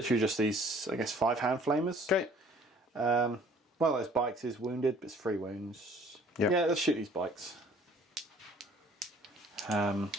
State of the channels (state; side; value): normal; both; correlation 0.55